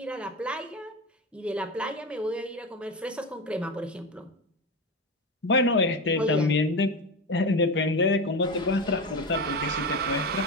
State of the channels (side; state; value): both; normal; correlation 0.20